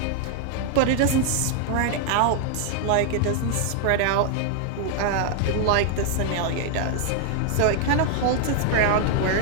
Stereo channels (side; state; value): both; different; correlation 0.00